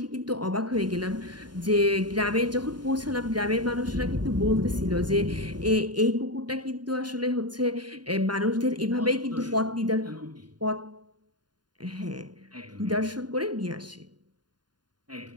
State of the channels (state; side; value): late; left; 0.70 ms